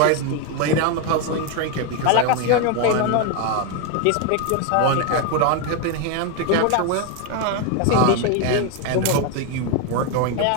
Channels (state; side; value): different; both; correlation 0.01